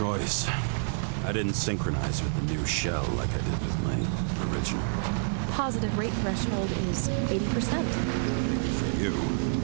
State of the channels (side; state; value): left; silent; digital silence